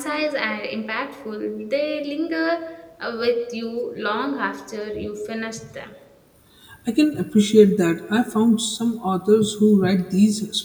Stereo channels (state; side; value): identical; both; correlation 1.00